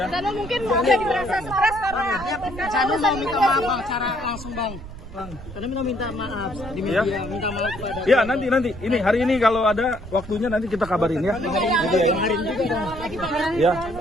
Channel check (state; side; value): noise; right; rumble, 13 dB below the sound